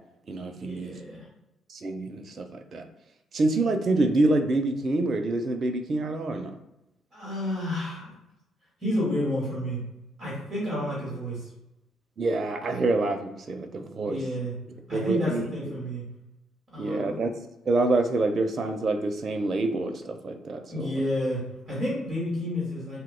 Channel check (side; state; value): both; normal; correlation 0.77